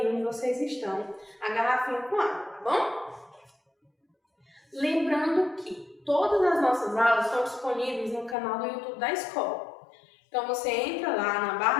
onde vocês estão a garrafinha com água, tá bom? Lembrando que todas as nossas aulas estão disponíveis no canal do YouTube da escola. Então você entra lá na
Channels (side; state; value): right; drops out; at 8.3 s